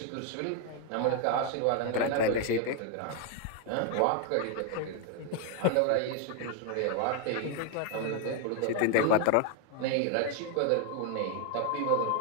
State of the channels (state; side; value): different; both; correlation 0.01